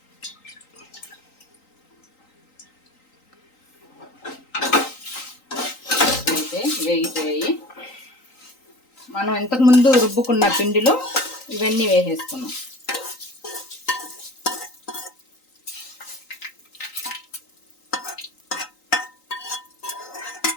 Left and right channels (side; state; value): right; late; 3.9 ms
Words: వేగిపోయాయి. మనం ఇంతకుముందు రుబ్బుకున్న పిండిలో ఇవన్నీ వేసేసుకున్నాం.